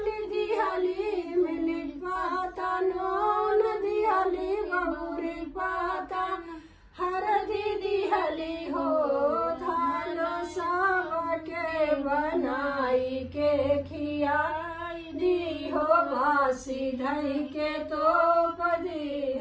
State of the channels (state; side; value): identical; both; correlation 1.00